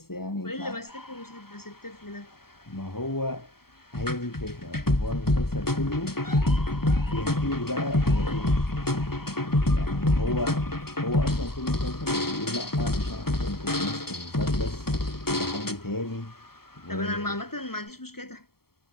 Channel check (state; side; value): late; right; 0.95 ms